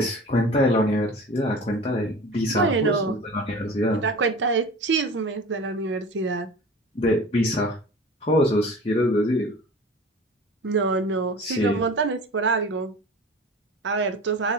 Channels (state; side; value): normal; both; correlation 0.38